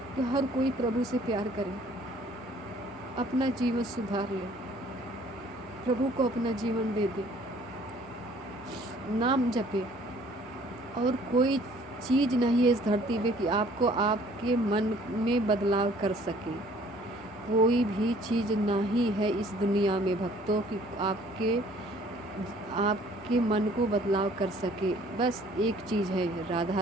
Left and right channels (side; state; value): both; normal; correlation 0.56